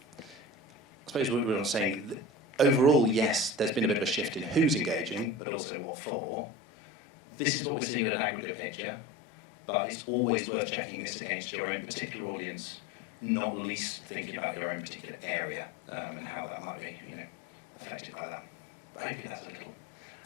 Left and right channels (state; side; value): drops out; right; at 5.4 s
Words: I suppose we're saying overall, yes, there's been a bit of a shift in who's engaging, but also what for. This is what we're seeing at an aggregate picture, but it's always worth checking this against your own particular audience, not least thinking about your own particular area and how that might be, affected by that. But hopefully that's